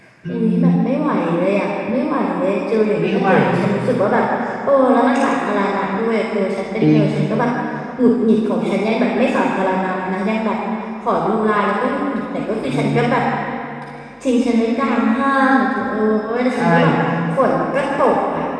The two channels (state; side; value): identical; both; correlation 1.00